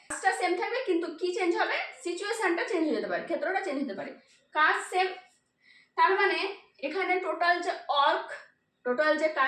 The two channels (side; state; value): both; identical; correlation 1.00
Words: কাজটা সেম থাকবে কিন্তু কি চেঞ্জ হবে, সিচুয়েশনটা চেঞ্জ হয়ে যেতে পারে, ক্ষেত্রটা চেঞ্জ হতে পারে, কাজ সেম। তার মানে এখানে টোটাল যে